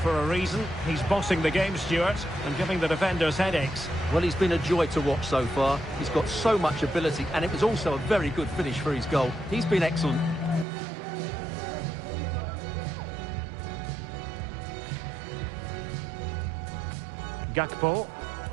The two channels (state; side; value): drops out; left; at 10.7 s